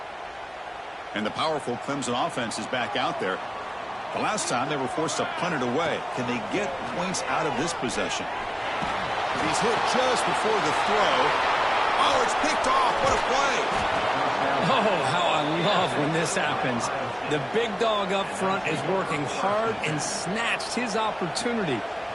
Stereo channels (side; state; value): both; identical; correlation 1.00